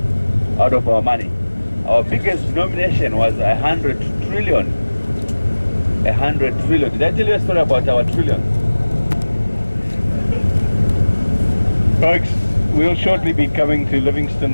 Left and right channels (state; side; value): inverted; both; correlation -1.00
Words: out of our money. Our biggest denomination was 100 trillion. 100 trillion. Did I tell you a story about our trillion? Folks, we'll shortly be coming to